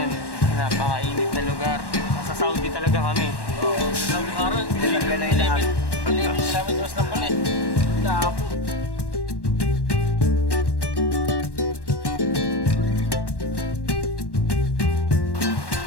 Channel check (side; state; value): right; late; 1.1 ms